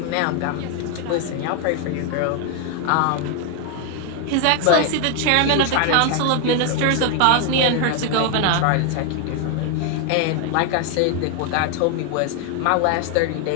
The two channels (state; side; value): different; both; correlation 0.01